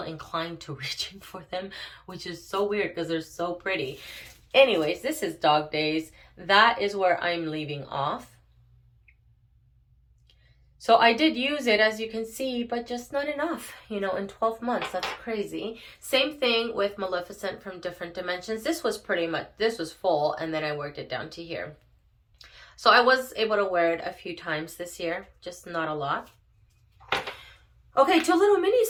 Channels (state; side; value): identical; both; correlation 1.00